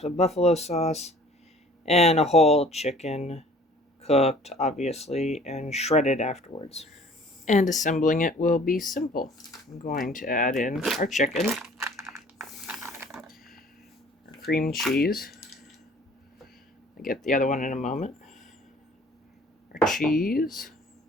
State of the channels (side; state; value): both; normal; correlation 0.51